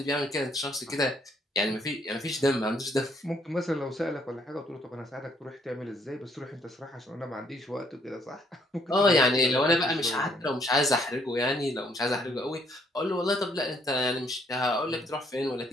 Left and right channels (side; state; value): both; normal; correlation 0.68